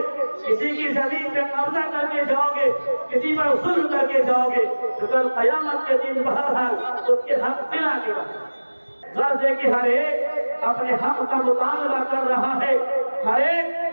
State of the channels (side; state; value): both; inverted; correlation -1.00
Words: کسی کی زمین پہ قبضہ کر کے جاؤ گے، کسی پر ظلم کر کے جاؤ گے تو کل قیامت کے دن بہرحال اس کے حق دلا کے غرض ہے کہ ہر ایک اپنے حق کا مطالبہ کر رہا ہے، ہر ایک